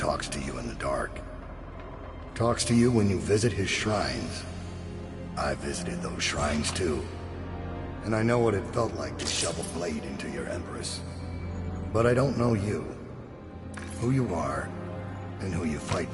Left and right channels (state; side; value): identical; both; correlation 1.00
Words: to you in the dark. Talks to you when you visit his shrines. I visited those shrines too. And I know what it felt like to shove a blade into your Empress. But I don't know you. Who you are, and who you fight